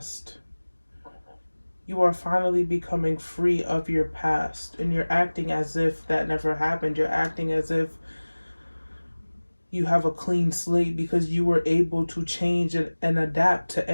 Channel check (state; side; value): inverted; both; correlation -1.00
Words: You are finally becoming free of your past. And you're acting as if that never happened. You're acting as if you have a clean slate because you were able to change and adapt to